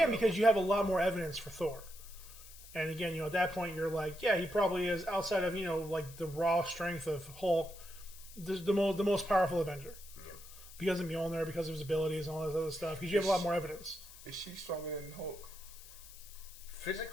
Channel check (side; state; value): left; noise; hiss, 18 dB below the sound